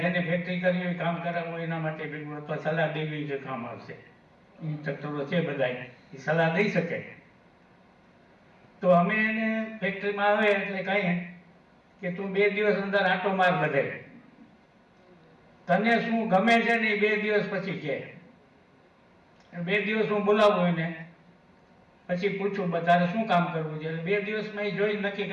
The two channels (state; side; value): identical; both; correlation 1.00